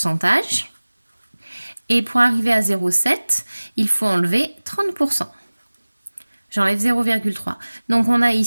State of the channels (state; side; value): inverted; both; correlation -1.00